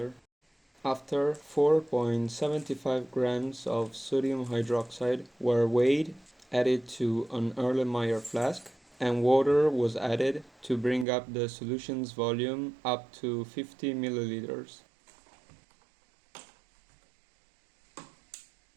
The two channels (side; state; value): left; drops out; at 11.1 s